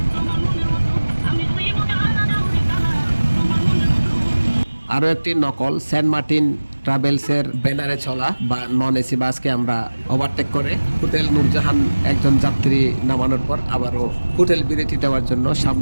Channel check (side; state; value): both; inverted; correlation -1.00